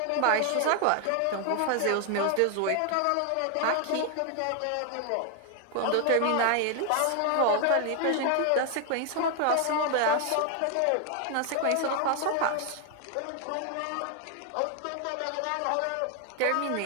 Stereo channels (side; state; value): both; different; correlation 0.00